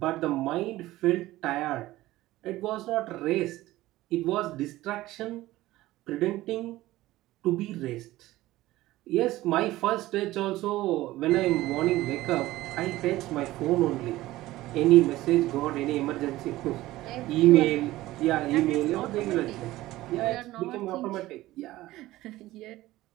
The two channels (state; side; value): quieter; left; 16.9 dB